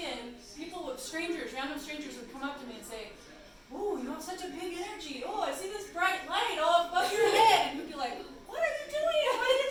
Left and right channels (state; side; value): identical; both; correlation 1.00